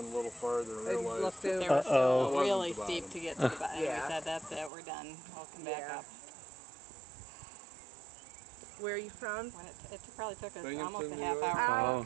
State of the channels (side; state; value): left; drops out; at 4.7 s